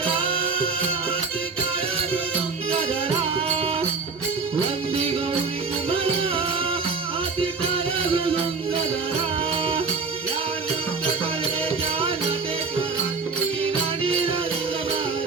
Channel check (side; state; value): left; quieter; 4.7 dB